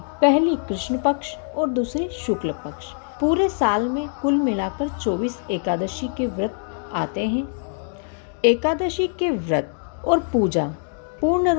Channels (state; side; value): silent; right; digital silence